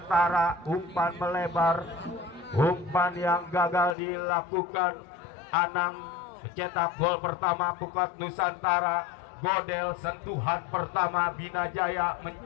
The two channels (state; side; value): drops out; right; at 4.0 s